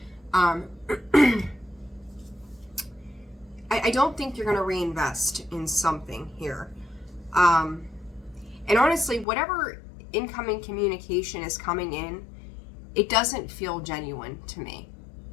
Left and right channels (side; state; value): right; drops out; at 9.2 s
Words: I don't think you're going to reinvest in something here. And honestly, whatever incoming communication is coming in, it doesn't feel genuine to me.